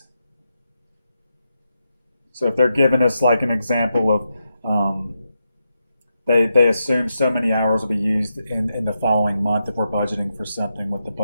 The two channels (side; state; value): both; inverted; correlation -0.85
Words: So if they're giving us like an example of they assume so many hours will be used in the following month if we're budgeting for something, what the